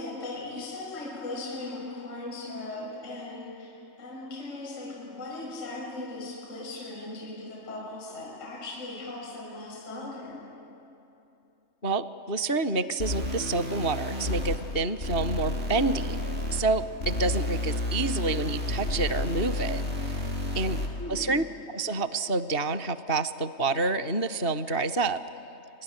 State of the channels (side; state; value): right; late; 3.2 ms